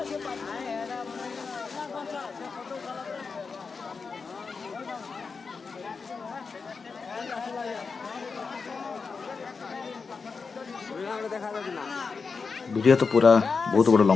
वीडियो तो पूरा बहुत बड़ा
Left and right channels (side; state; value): right; quieter; 4.9 dB